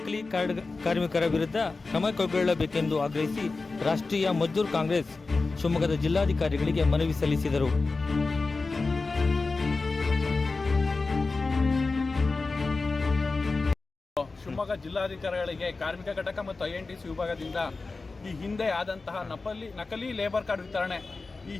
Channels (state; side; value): quieter; right; 3.8 dB